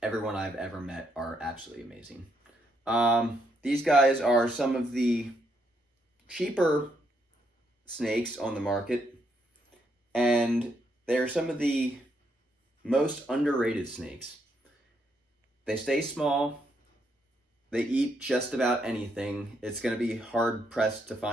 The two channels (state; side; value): normal; both; correlation 0.76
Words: everyone I've ever met are absolutely amazing. These guys are some of the cheaper snakes on the market, and they're some of the most underrated snakes. They stay small. They eat just about anything. It's going to be hard pressed to